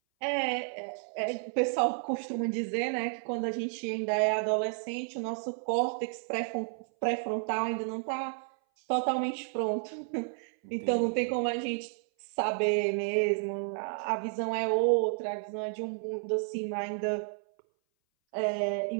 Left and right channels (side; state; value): left; silent; 57 dB below the other